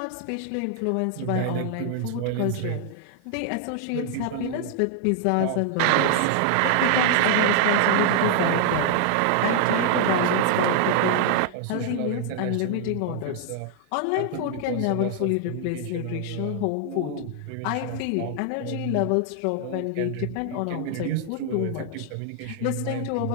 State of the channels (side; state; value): both; different; correlation 0.00